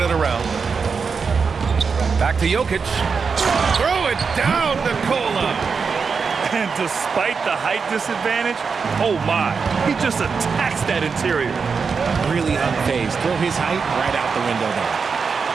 it around. Back to Jokic. Throw it down, Nikola. And despite the height disadvantage, oh my, he just attacks that interior. Really unfazed. Throw his height right out the window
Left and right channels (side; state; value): left; quieter; 5.4 dB